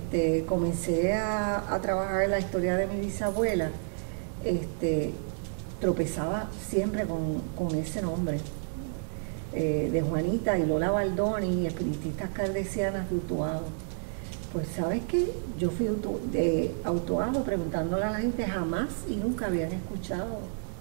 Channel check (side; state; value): left; silent; digital silence